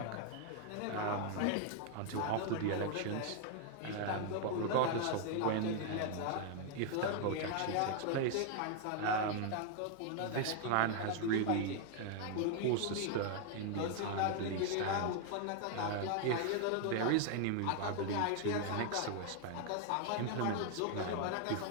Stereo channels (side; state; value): both; different; correlation 0.00